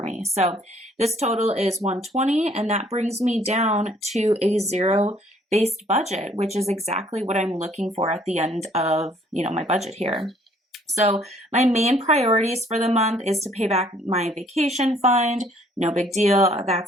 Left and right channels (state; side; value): normal; both; correlation 0.61